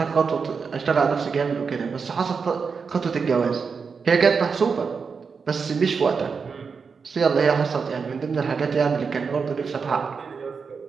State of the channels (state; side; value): quieter; left; 5.4 dB